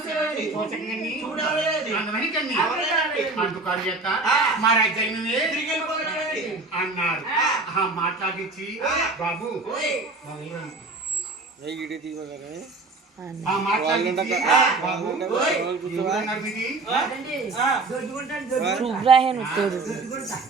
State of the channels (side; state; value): left; quieter; 3.5 dB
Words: అందుకారు యొక్క మా రాజ్యాన్ని అన్నారు మాట్లాడించి బాబు